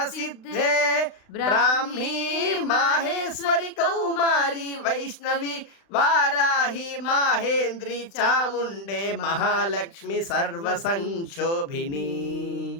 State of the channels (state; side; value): late; right; 35 ms